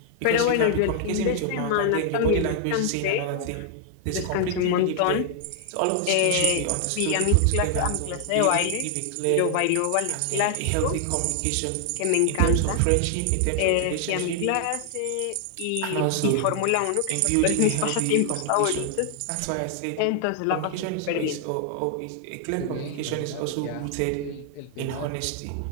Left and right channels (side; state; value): both; different; correlation 0.00